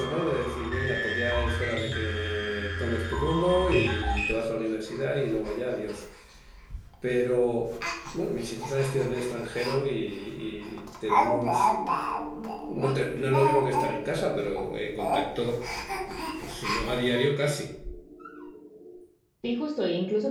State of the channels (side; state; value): both; identical; correlation 1.00